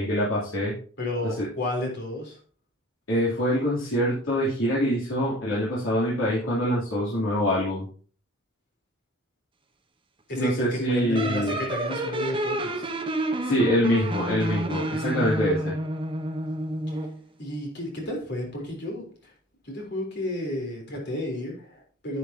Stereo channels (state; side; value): normal; both; correlation 0.47